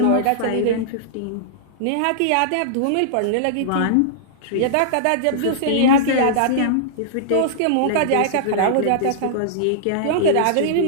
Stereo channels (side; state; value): both; different; correlation -0.02